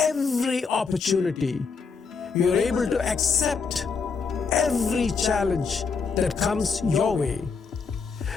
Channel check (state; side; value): quieter; right; 5.2 dB